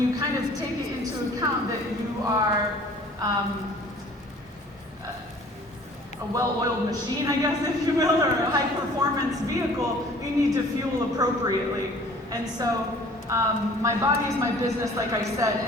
kind of take it into account that you are a well-oiled machine, I guess, if you will, or a high-performance vehicle, you need to fuel appropriately. And so my body is my business, like I said,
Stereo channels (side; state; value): both; normal; correlation 0.51